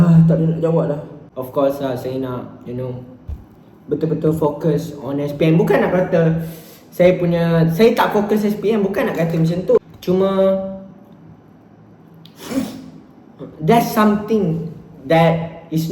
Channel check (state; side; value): identical; both; correlation 1.00